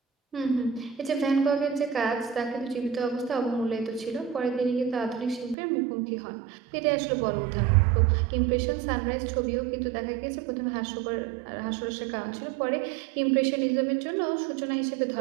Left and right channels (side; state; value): left; drops out; at 5.6 s